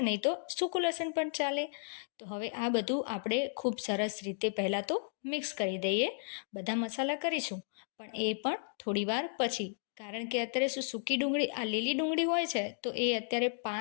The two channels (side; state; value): right; silent; digital silence